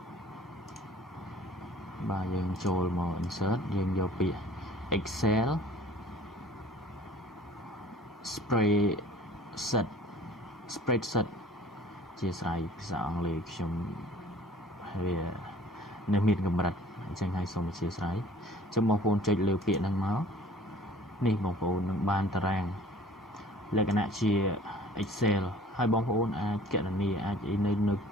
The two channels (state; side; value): normal; both; correlation 0.50